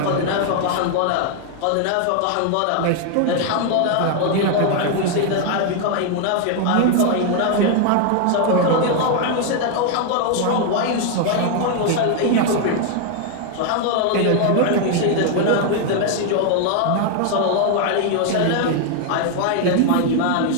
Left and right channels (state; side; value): different; both; correlation 0.00